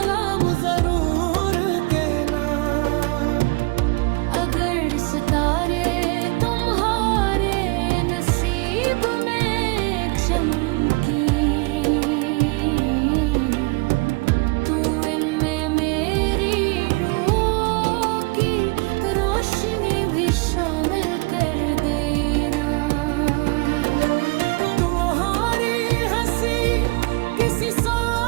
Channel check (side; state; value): left; quieter; 27.4 dB